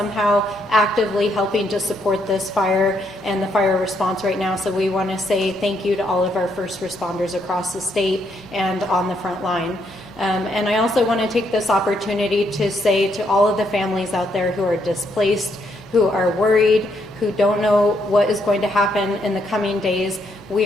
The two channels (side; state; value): right; noise; hum, 26 dB below the sound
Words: actively helping to support this fire and the fire response right now. So we want to say thank you to all of our first responders across the state and on the front line. And I also want to take this opportunity to say to all of the families out there who are displaced, who are worried, who don't know what is going to happen in the coming days,